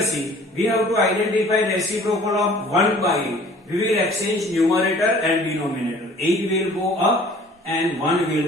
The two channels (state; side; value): normal; both; correlation 0.51